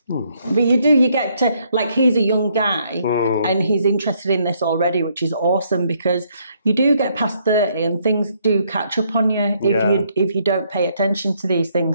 But you get to, like, he's a young guy and he's interested in this already, which is awesome, because you do get past 30 and things do catch up on you if you don't pay attention to these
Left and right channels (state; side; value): inverted; both; correlation -0.71